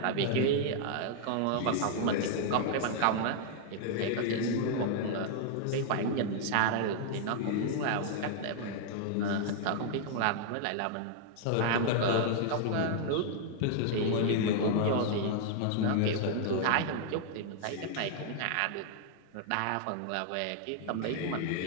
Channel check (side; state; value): both; different; correlation 0.00